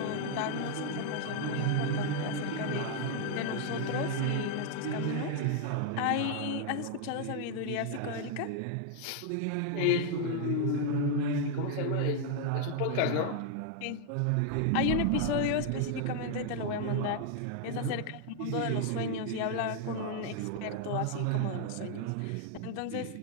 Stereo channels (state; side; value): different; both; correlation 0.00